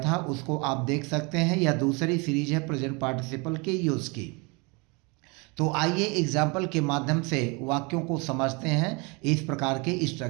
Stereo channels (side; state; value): left; quieter; 29.2 dB